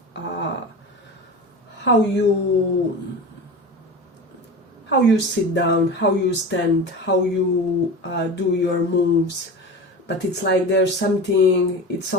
how you sit down, how you stand, how you do your moves. But it's like there's something, it's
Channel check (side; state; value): both; normal; correlation 0.30